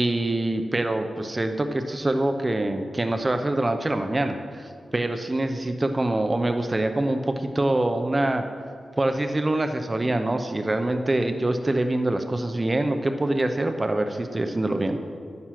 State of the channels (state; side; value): normal; both; correlation 0.97